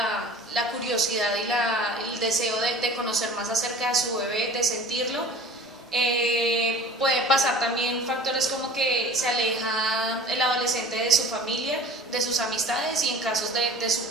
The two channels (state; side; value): normal; both; correlation 0.42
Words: curiosidad y el deseo de conocer más acerca de su bebé, de sentirlo. Pueden pasar también factores como que se aleja el adolescente de su familia, de sus amistades y en casos de su